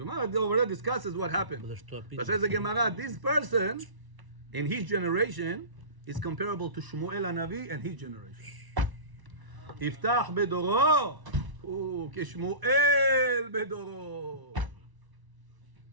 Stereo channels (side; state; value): left; late; 1.0 ms